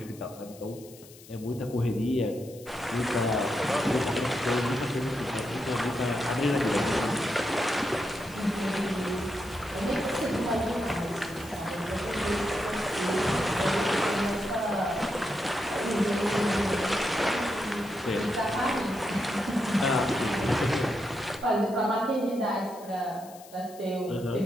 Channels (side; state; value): left; noise; hiss, 21 dB below the sound